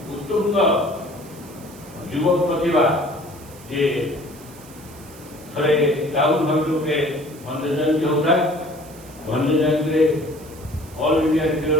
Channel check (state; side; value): noise; right; hiss, 21 dB below the sound